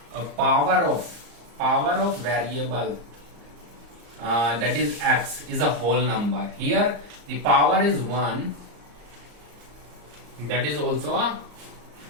power of variable that is x is a whole number. Here the power is 1, that is also a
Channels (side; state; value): left; late; 34 ms